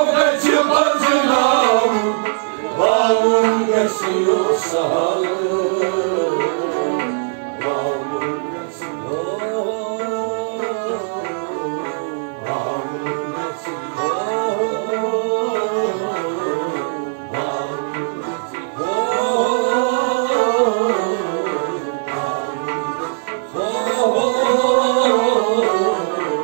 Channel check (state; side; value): silent; left; 56 dB below the other